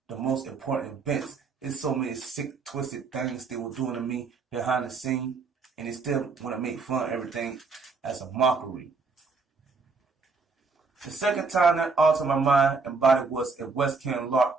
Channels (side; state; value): left; quieter; 4.4 dB